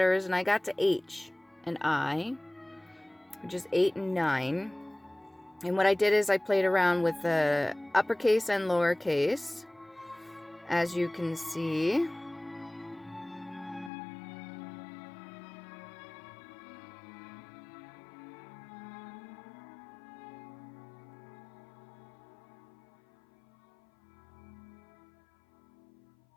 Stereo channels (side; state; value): right; drops out; at 13.9 s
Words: and I got to H and I, which is 8 and 9. And what I did is I played around with the uppercase and lowercase, as you can see.